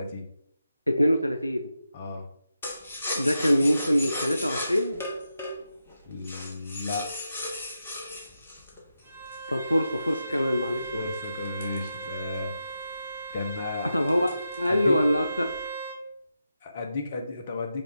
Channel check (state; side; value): inverted; both; correlation -0.87